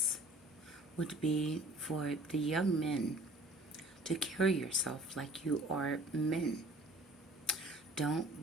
would be for the young men to carry yourself like you are men.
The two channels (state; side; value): normal; both; correlation 0.50